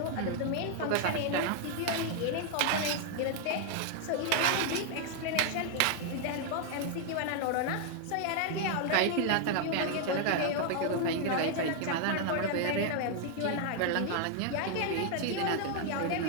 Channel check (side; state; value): both; different; correlation 0.00